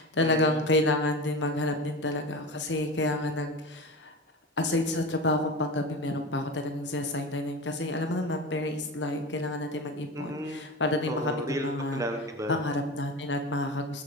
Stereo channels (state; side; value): normal; both; correlation 0.28